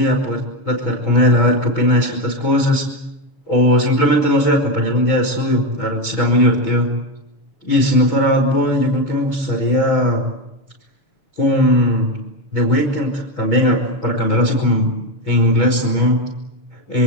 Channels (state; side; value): late; right; 6.9 ms